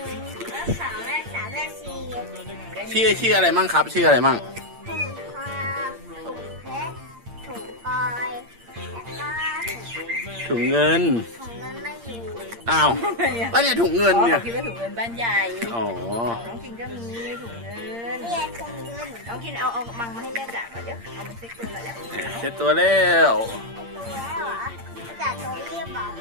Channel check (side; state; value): left; late; 8.7 ms